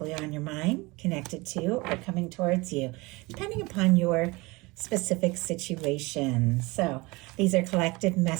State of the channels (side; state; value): left; quieter; 23.7 dB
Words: on your mind, connected to, or coming towards you, depending upon your specific situation. So these are collective